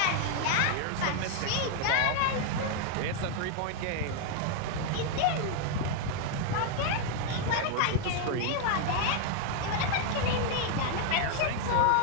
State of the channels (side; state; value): both; different; correlation 0.00